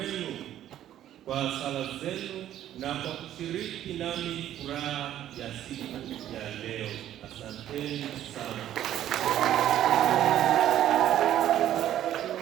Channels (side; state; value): left; quieter; 11.9 dB